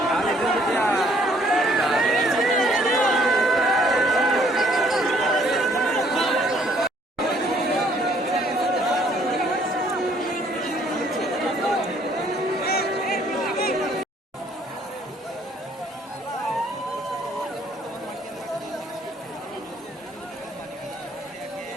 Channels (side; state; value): both; normal; correlation 0.62